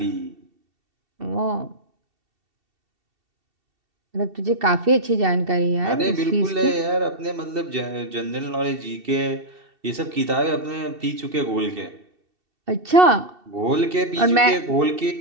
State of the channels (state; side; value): late; left; 2.7 ms